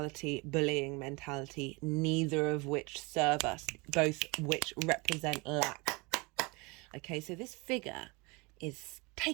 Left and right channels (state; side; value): quieter; left; 27.1 dB